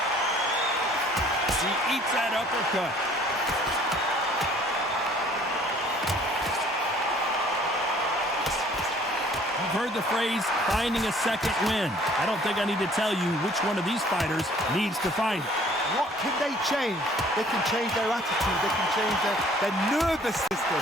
She eats that uppercut. You've heard the phrase, finding a second win. I don't think I need to tell you which one of these fighters needs to find it. What can they change? They can change their attitude. They can change their nervous system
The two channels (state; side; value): normal; both; correlation 0.55